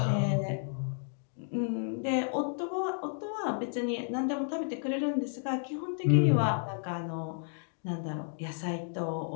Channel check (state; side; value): silent; right; digital silence